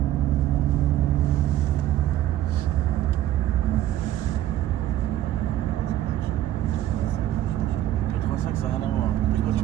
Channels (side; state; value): left; quieter; 13.0 dB